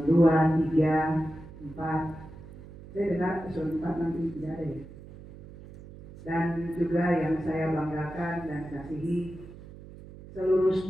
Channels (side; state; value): right; noise; hum, 17 dB below the sound